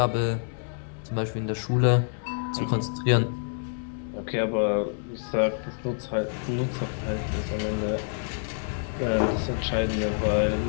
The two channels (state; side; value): silent; right; digital silence